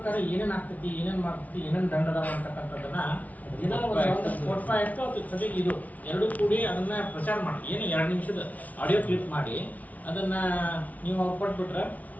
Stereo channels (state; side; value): late; right; 0.072 ms